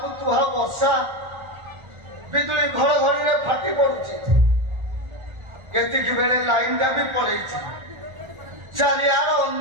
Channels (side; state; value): left; late; 1.4 ms